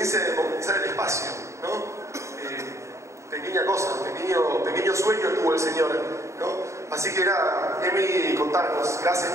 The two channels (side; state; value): left; late; 0.14 ms